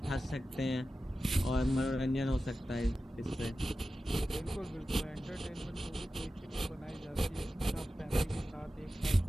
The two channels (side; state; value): both; normal; correlation 0.93